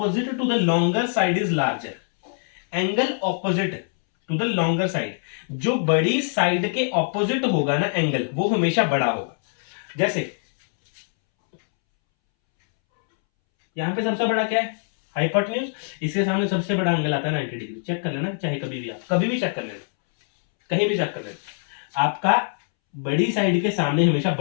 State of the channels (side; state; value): right; silent; 63 dB below the other